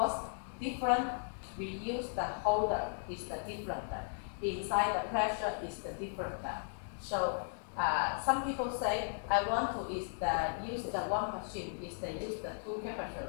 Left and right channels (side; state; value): right; silent; 53 dB below the other